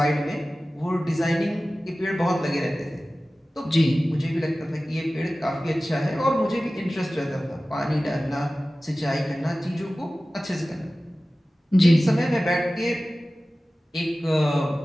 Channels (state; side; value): normal; both; correlation 0.96